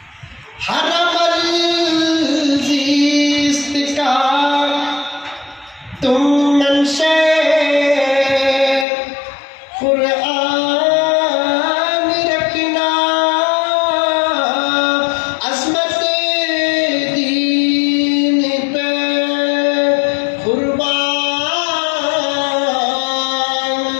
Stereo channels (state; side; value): drops out; right; at 8.8 s